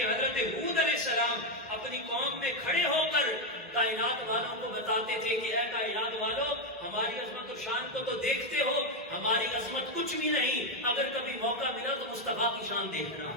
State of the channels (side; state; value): both; normal; correlation 0.06